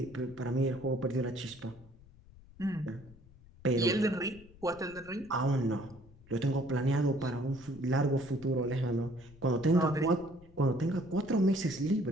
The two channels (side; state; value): left; noise; rumble, 22 dB below the sound